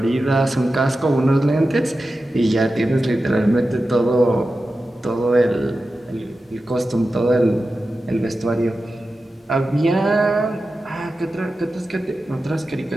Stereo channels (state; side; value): normal; both; correlation 0.93